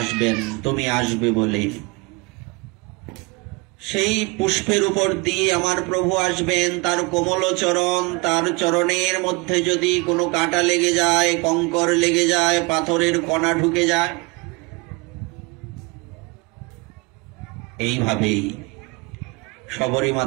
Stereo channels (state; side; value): quieter; left; 27.3 dB